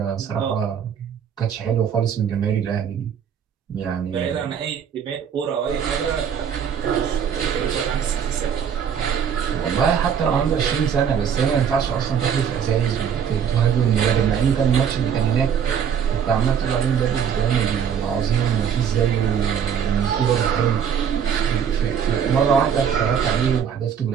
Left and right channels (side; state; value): left; quieter; 7.9 dB